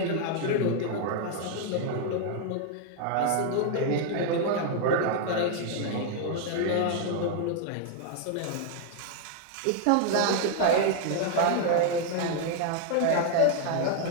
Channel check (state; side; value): different; both; correlation 0.00